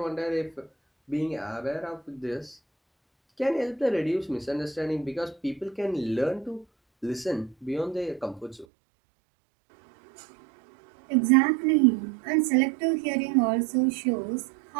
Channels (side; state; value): left; drops out; at 8.7 s